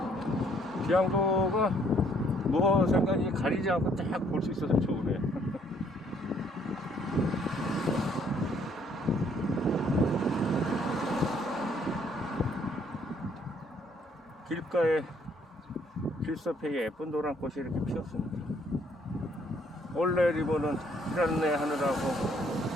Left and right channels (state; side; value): normal; both; correlation 0.65